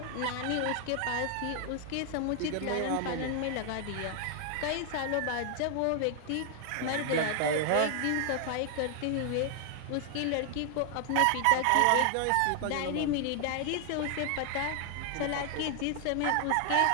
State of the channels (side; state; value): both; different; correlation 0.00